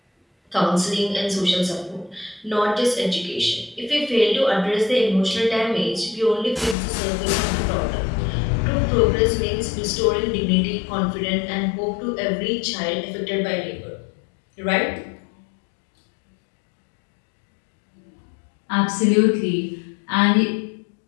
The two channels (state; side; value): drops out; right; at 6.8 s